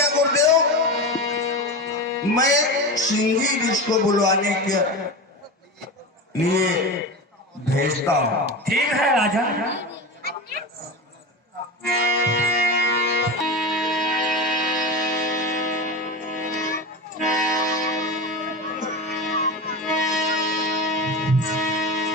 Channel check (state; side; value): normal; both; correlation 0.24